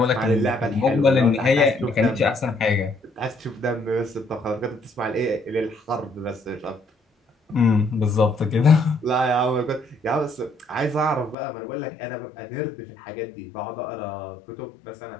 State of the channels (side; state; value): right; drops out; at 11.4 s